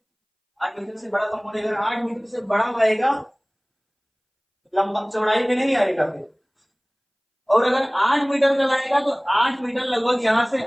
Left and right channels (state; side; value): identical; both; correlation 1.00